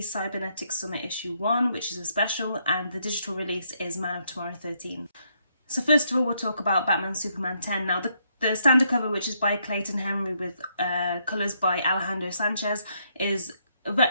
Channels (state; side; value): inverted; both; correlation -0.75